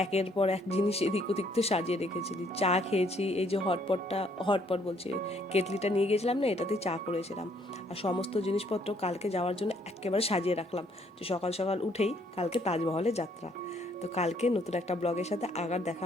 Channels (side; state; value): both; normal; correlation 0.66